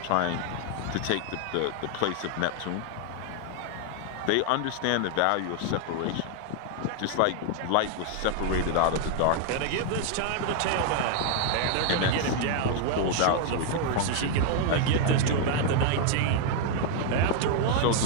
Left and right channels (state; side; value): different; both; correlation 0.00